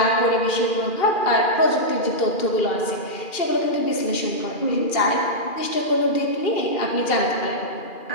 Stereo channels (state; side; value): late; right; 2.4 ms